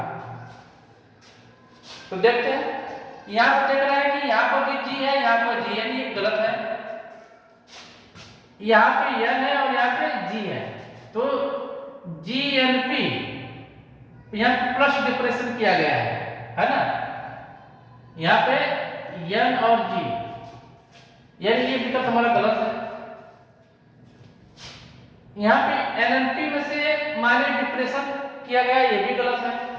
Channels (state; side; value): identical; both; correlation 1.00